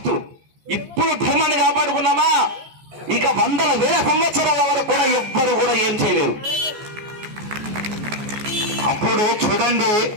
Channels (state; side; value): late; left; 14 ms